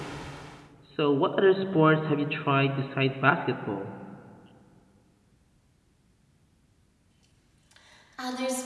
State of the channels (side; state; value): both; identical; correlation 1.00